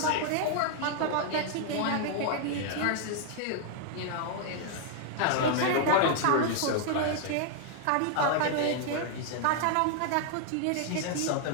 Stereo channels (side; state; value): both; different; correlation 0.00